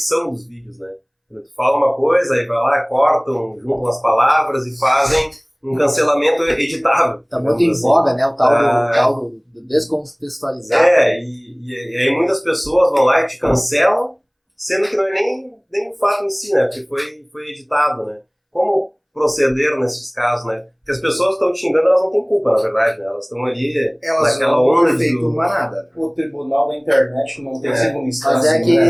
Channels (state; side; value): identical; both; correlation 1.00